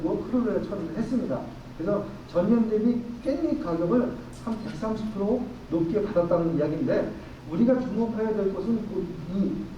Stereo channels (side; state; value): both; identical; correlation 1.00